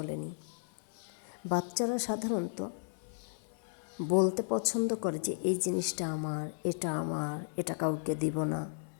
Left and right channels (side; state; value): right; silent; digital silence